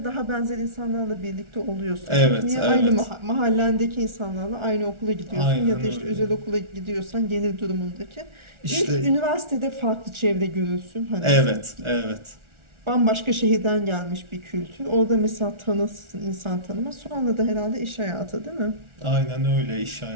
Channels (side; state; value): left; late; 1.4 ms